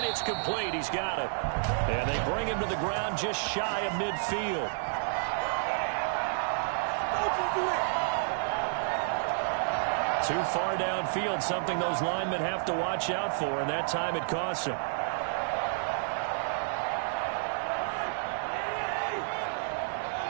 it's complete. He's got it. And they bring him to the ground just shy of midfield. Too far downfield, something those linemen have to watch out for, and that time it costs them.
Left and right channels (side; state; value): left; silent; digital silence